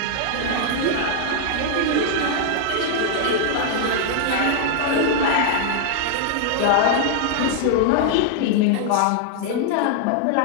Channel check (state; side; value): different; both; correlation 0.00